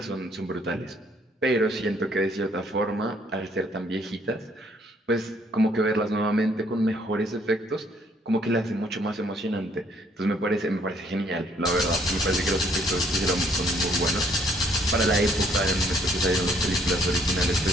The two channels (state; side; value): normal; both; correlation 0.65